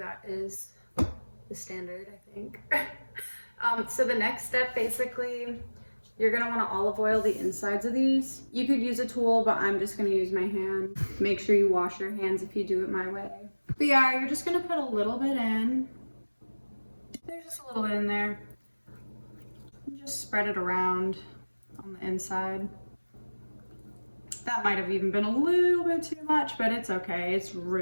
is the standard, I think. So the next step, basically, you're gonna wanna olive oil the insides of these. You could use a tool, but I'm just gonna use my hand. Make sure you wash your hands if you do it my way. But yeah, you're just gonna put a little bit in. There's just a little bit in there. Just spread it around on the inside. That might have even been a little bit too much, but it's okay. It's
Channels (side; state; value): both; inverted; correlation -1.00